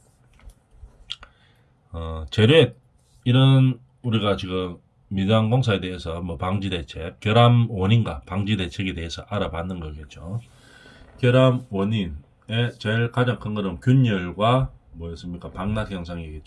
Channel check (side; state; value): both; identical; correlation 1.00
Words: 재료에 이런 우리가 지금 미장 공사에 대해서 뭐 방지 대책, 결함 원인과 방지 대책에 대해서 알아봤는 거겠죠. 결함 원인의 제일 가장 큰 거는 균열과 뭐였습니까? 방락